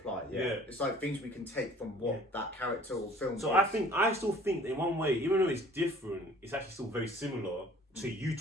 It's like things we can take from what that character or film. So I still think that in one way, even though it's different, it's actually still very similar to you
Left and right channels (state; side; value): normal; both; correlation 0.51